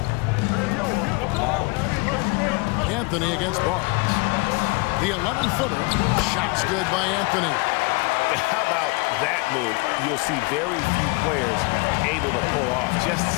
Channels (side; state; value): right; quieter; 27.7 dB